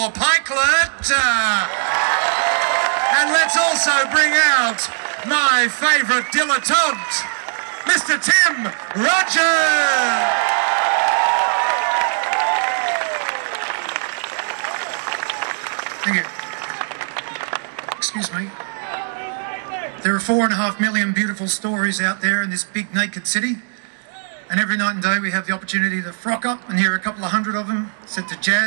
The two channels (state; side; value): silent; left; digital silence